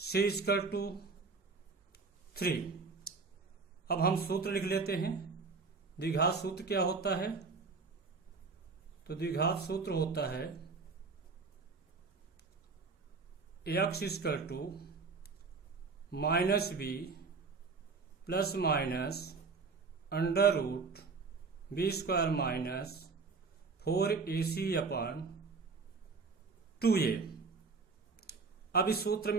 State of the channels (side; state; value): left; quieter; 4.5 dB